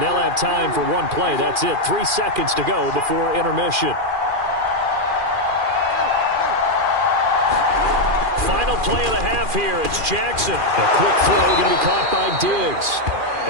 they'll have time for one play. That's it. 3 seconds to go before intermission. Final play of the half here. It's Jackson. A quick throw going to be caught by Diggs.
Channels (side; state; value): left; late; 2.4 ms